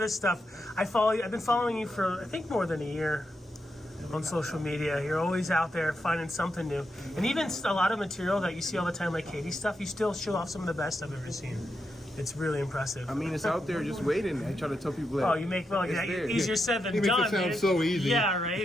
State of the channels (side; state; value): both; normal; correlation 0.85